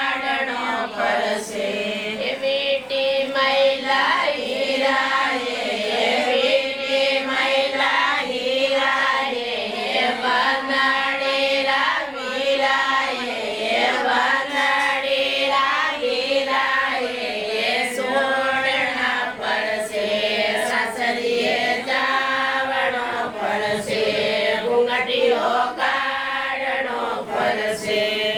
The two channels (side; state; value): right; noise; rumble, 29 dB below the sound